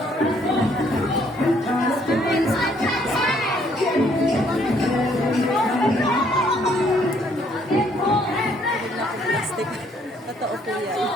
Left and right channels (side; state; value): both; normal; correlation 0.66